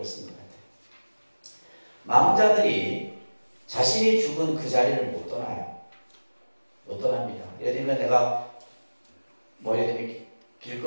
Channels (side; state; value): both; inverted; correlation -1.00